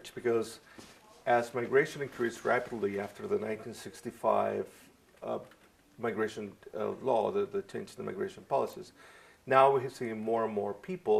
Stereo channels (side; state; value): both; identical; correlation 1.00